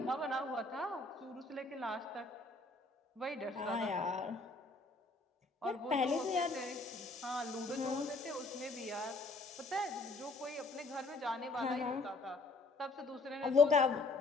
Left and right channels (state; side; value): quieter; right; 3.2 dB